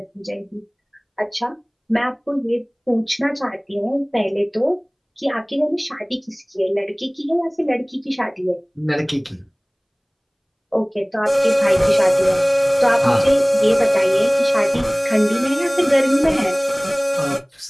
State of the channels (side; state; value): both; identical; correlation 1.00